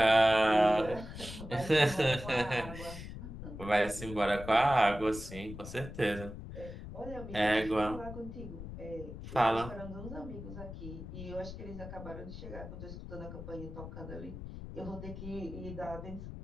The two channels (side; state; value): left; noise; rumble, 10 dB below the sound